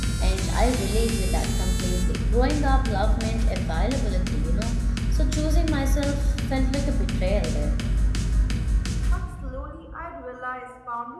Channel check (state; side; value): identical; both; correlation 1.00